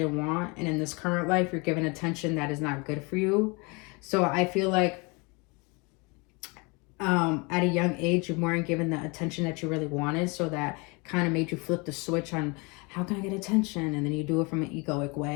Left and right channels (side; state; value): right; quieter; 28.9 dB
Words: want. And in this current life, you're given attention that is not good for you. So I feel like at a young age, you weren't given the attention that you really wanted. So that kind of made you flip the switch on how can I get attention? And then you do it from an egoic